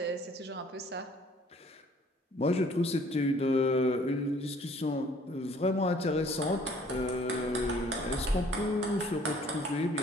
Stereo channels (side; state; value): both; normal; correlation 0.57